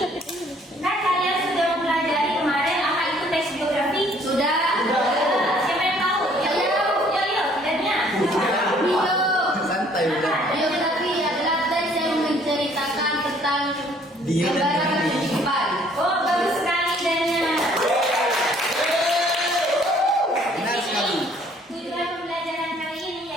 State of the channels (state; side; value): normal; both; correlation 0.60